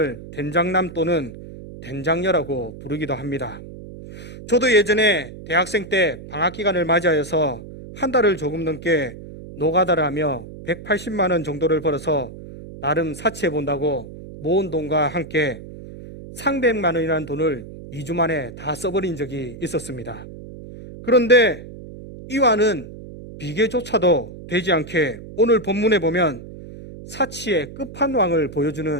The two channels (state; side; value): noise; right; hum, 14 dB below the sound